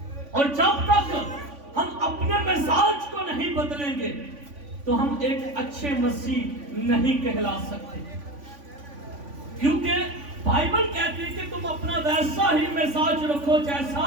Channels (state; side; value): late; left; 3.5 ms